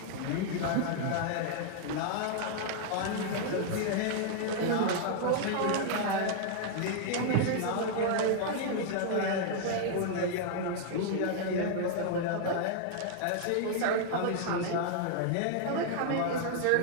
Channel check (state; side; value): different; both; correlation -0.01